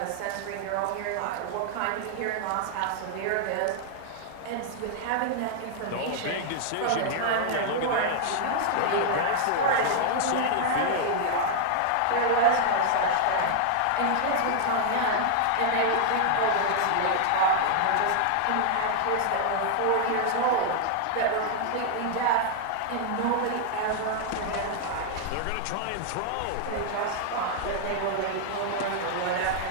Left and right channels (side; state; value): both; different; correlation -0.01